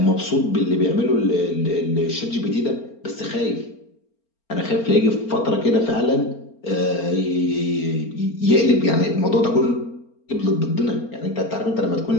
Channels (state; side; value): late; right; 4.4 ms